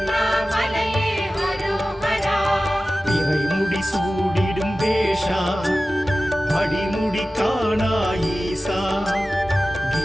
அரோகரா இறைமுடி சூடிடும் வேஷா அடிமுடி காணா ஈசா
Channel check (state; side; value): normal; both; correlation 0.96